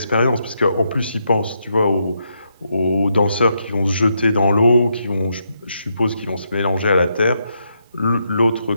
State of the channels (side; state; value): both; inverted; correlation -0.80